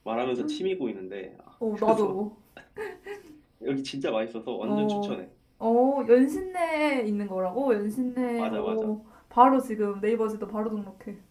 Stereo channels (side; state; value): both; identical; correlation 1.00